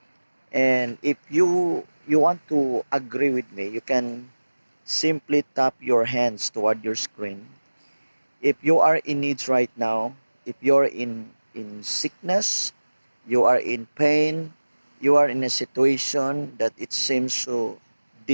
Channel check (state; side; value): inverted; both; correlation -1.00